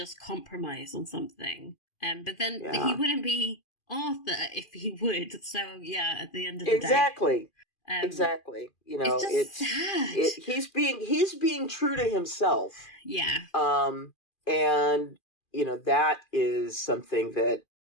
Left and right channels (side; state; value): right; late; 2.4 ms